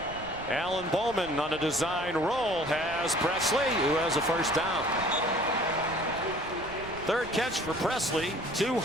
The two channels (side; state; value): right; noise; rumble, 16 dB below the sound